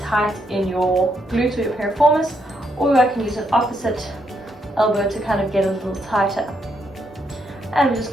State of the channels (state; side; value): normal; both; correlation 0.77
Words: in your glutes or your piriformis, or I can use an opposite elbow to kind of get a little tighter. And we're just